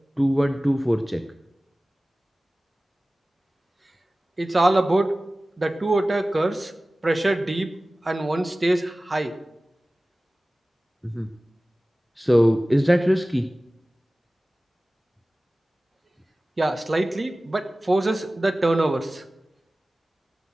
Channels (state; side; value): normal; both; correlation 0.97